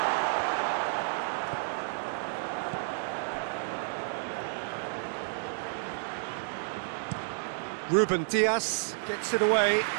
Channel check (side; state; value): left; silent; digital silence